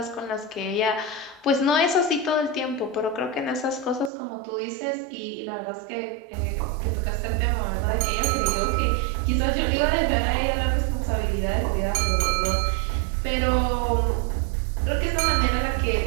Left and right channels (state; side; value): drops out; left; at 4.1 s